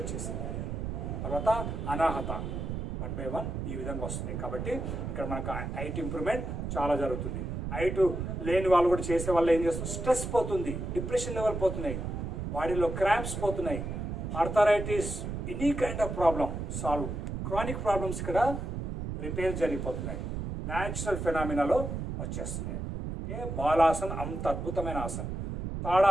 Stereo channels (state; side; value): noise; right; rumble, 4 dB below the sound